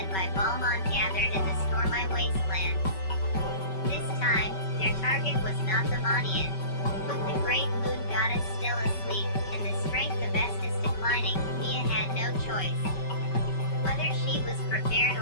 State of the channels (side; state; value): right; late; 5.2 ms